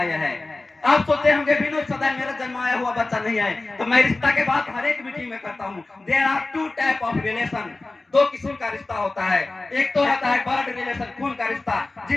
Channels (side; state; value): right; quieter; 3.2 dB